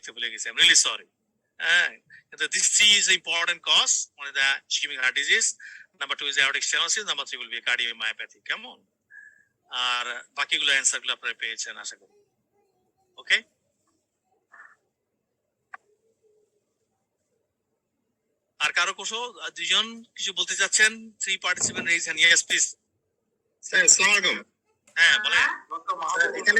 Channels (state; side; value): identical; both; correlation 1.00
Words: ভুলে গেছি, আই এম রিয়েলি সরি। কিন্তু this 3 is the important cause, one is the ischemic heart disease, number 2 is aortic stenosis, number 3 will be cardiomyopathy. কেমন? আর বাকিগুলো অ্যান্সার গুলো আপনারা পেয়েছেন আশা করি। ওকে, আর কারো কোশো দুজন কিছু বলতে চাচ্ছেন? 3 participant raise hand. Yes please. Sir আসসালামু আলাইকুম। হ্যাঁ বলেন। এখানে